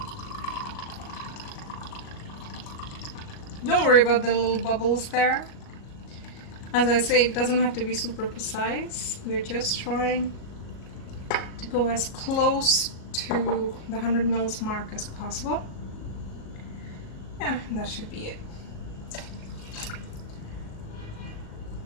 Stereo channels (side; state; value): right; late; 37 ms